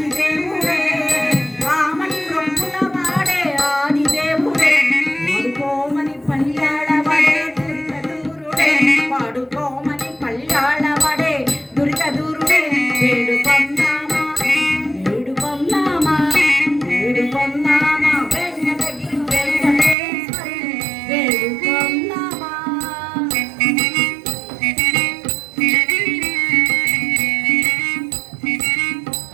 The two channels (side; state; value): left; drops out; at 20.0 s